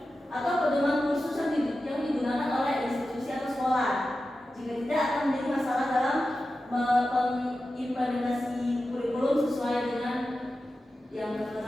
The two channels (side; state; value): both; normal; correlation 0.93